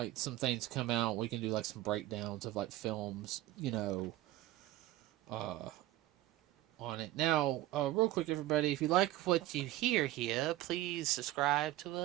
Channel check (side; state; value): left; quieter; 15.5 dB